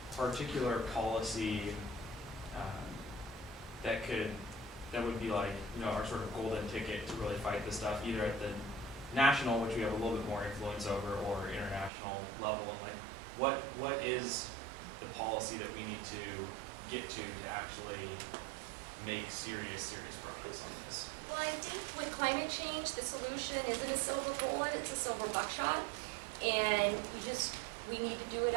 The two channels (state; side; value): drops out; left; at 11.9 s